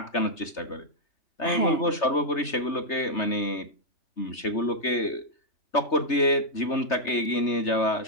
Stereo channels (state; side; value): late; right; 3.3 ms